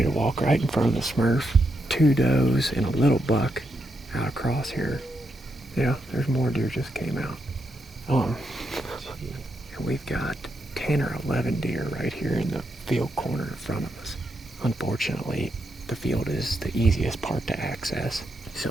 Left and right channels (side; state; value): both; normal; correlation 0.82